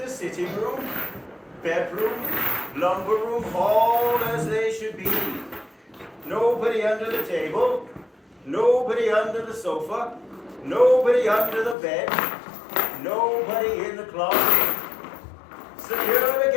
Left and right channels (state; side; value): drops out; right; at 11.8 s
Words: sitting room, bedroom, lumber room, all as they should be. Nobody under the table, nobody under the sofa, nobody under the bed, nobody in the closet. Secure